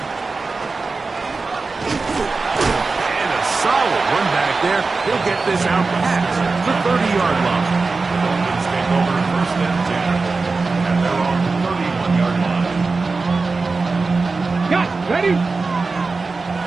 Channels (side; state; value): left; quieter; 4.0 dB